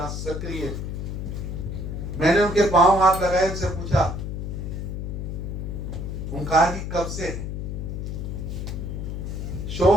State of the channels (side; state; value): left; noise; hum, 4 dB below the sound